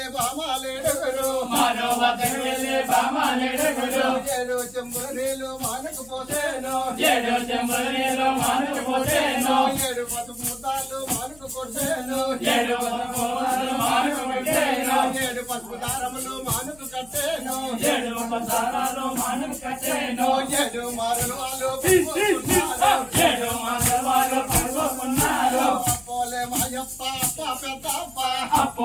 బామాలేడుగురు, మానవతకు వెళ్ళే బామాలేడుగురు. 7 చెంబుల నీళ్లు మానకపోతేను, 7 చెంబుల నీళ్లు మానకపోతేను, 7 పసుపు ముద్దాలు మానకు కొట్టేను, 7 పసుపు ముద్దాలు మానకు కొట్టేను, 7 పసుపు దారములు మానకు కట్టేను, 7 పసారాలు మానకు కట్టేను, 7 మారలు వాళ్ళు 7 మారలు వాళ్ళు పడుకున్నారు. అప్పోలే మాయప్ప అప్ప పెద్దప్ప,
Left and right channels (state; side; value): noise; left; hum, 24 dB below the sound